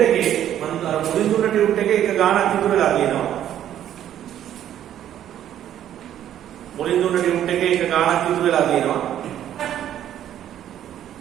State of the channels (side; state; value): left; quieter; 11.1 dB